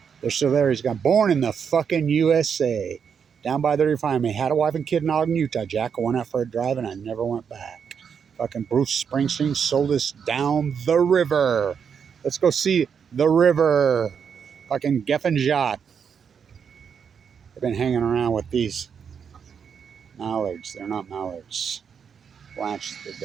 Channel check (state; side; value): quieter; left; 7.0 dB